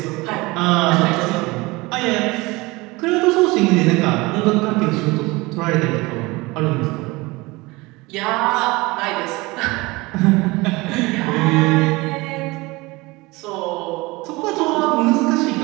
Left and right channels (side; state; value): left; quieter; 22.9 dB